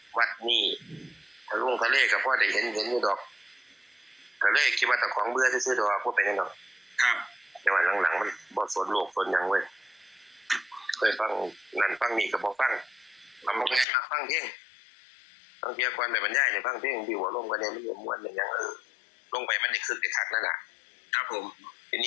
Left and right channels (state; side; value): drops out; right; at 13.9 s